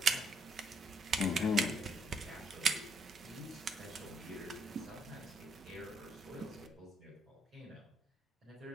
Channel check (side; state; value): both; normal; correlation 0.72